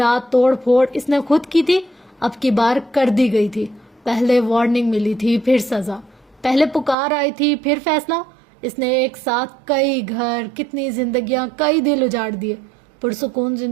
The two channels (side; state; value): left; drops out; at 7.0 s